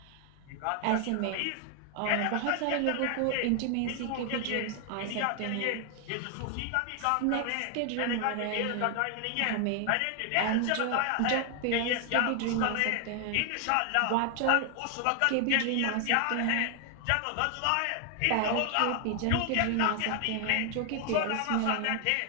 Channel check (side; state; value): both; different; correlation 0.00